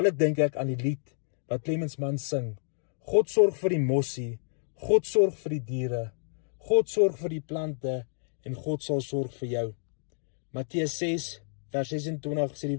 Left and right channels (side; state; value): right; silent; digital silence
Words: dink ek aan die lied wat Clemens Mann sing. God sorg vir die mossie, God sorg vir die diere, God sorg vir die plante en God sal sorg vir jou. Matteus 6 vers 26 sê